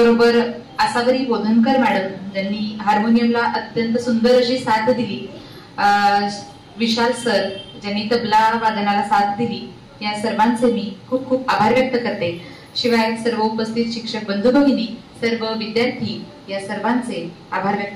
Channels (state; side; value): identical; both; correlation 1.00